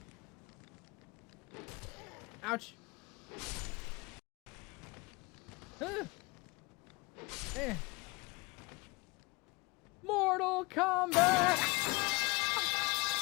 Ouch. Mortal Kombat!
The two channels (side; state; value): right; quieter; 26.0 dB